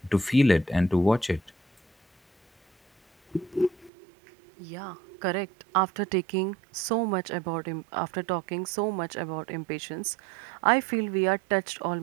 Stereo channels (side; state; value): left; drops out; at 3.9 s